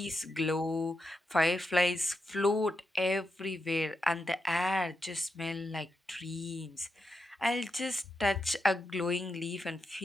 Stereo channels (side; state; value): both; normal; correlation 0.86